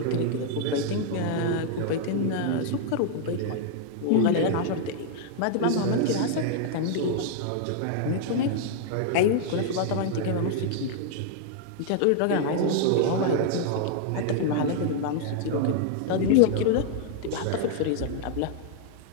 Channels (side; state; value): both; different; correlation -0.01